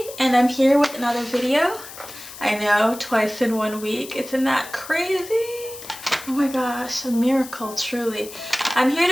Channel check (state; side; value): noise; left; hiss, 15 dB below the sound